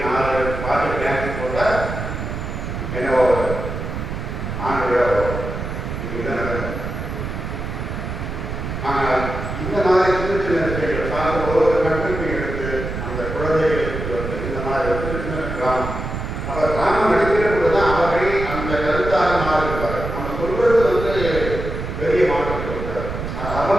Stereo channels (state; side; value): noise; right; rumble, 5 dB below the sound